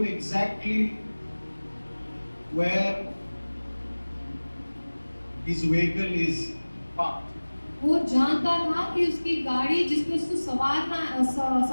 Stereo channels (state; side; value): inverted; both; correlation -1.00